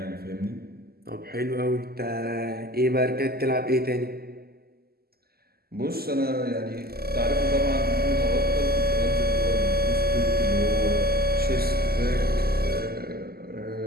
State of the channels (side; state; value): left; late; 0.45 ms